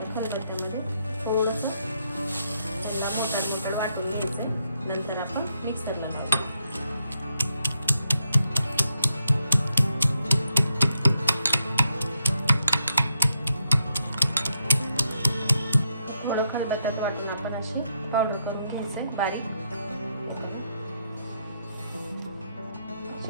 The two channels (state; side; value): inverted; both; correlation -0.78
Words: खलबत्त्यामध्ये थोडंसं मोठं वाटून घ्यायचंय। नंतर आपण मिक्सरला लावू। थोडं खलबत्त्यात वाटून आपण अशी पावडर करून घ्यायचंय बारीक।